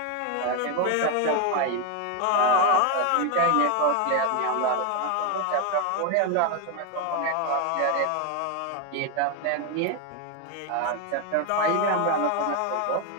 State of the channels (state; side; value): different; both; correlation 0.01